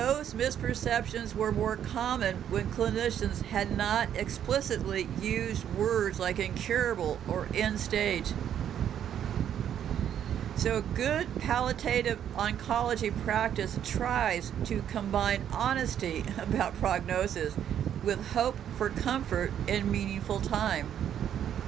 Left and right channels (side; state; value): left; quieter; 9.7 dB